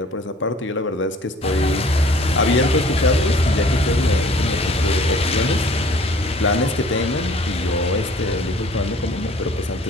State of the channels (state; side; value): normal; both; correlation 0.52